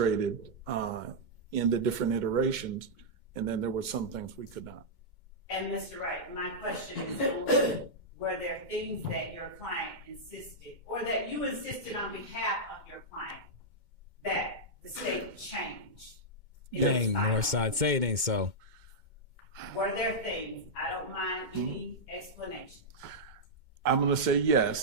in the different iterations, and then there were some things we could not. And Mr. Wright, my question is, were there things that your client insisted, or that you insisted on behalf of your client, that the state changed? Dang, Northside, say it ain't so. Were there things? I don't mind any explanation. I'm going to say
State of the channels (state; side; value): late; left; 2.2 ms